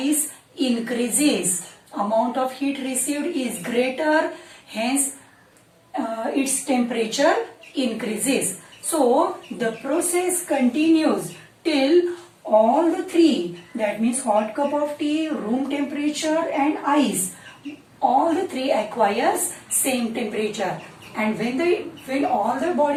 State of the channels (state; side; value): identical; both; correlation 1.00